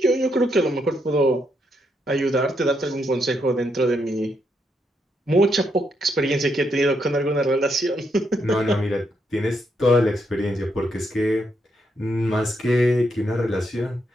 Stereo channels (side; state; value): both; normal; correlation 0.78